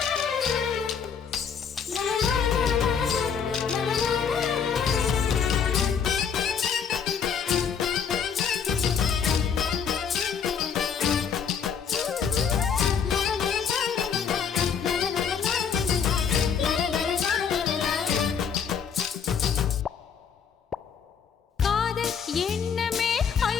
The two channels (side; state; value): right; quieter; 6.9 dB